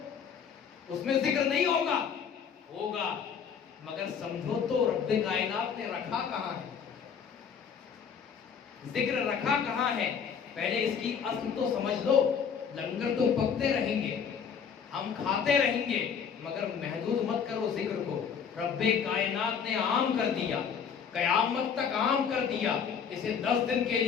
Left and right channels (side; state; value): right; quieter; 7.1 dB